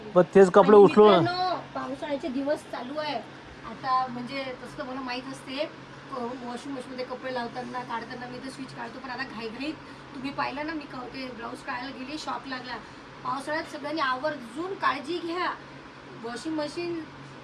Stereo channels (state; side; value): identical; both; correlation 1.00